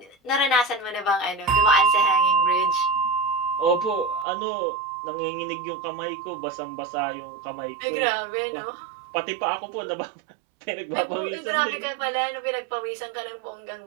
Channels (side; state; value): left; drops out; at 4.2 s